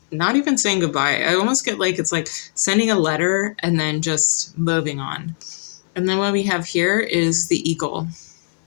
not even saying goodbye. I almost get like it's like sending a letter and then just moving on. And then what we have here is the eagle.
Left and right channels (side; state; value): right; silent; 66 dB below the other